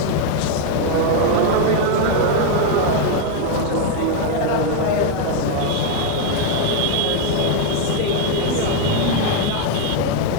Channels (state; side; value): different; both; correlation 0.01